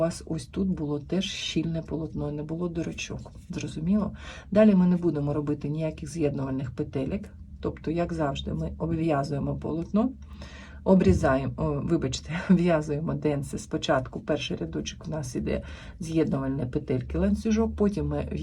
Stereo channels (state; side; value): identical; both; correlation 1.00